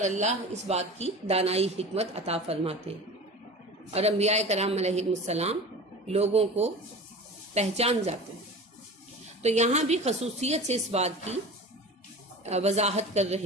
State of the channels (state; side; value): normal; both; correlation 0.35